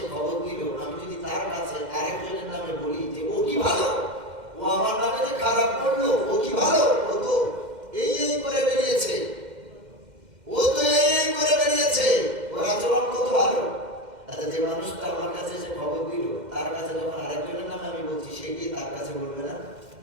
খবর দিল, আমি যদি তার কাছে আরেকজনের নামে বলি যে ও কি ভালো, ও আমার নামে যে খারাপ করলো, ও কি ভালো, ও তো এই করে বেরিয়েছে, ও তো এই করে বেরিয়েছে, ওর আচরণ কত ভালো। আচ্ছা, যে মানুষটা আমার কাছে এসে খবর দিল, তার কাছে যখন আরেকজনের নামে আমি বলছি, সে কি তার কাছে বলবে না?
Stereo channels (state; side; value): late; left; 2.1 ms